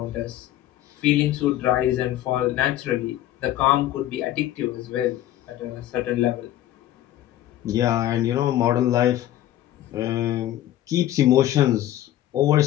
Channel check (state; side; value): quieter; right; 13.2 dB